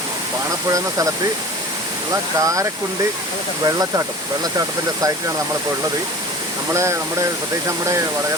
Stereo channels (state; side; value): normal; both; correlation 0.40